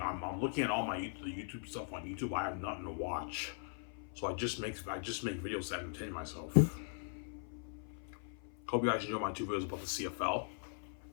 I'm looking at all the YouTube stuff on YouTube. I have nothing to watch, so I just make videos to entertain myself. Hope you guys enjoy my two videos about the CFL,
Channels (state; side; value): silent; right; 51 dB below the other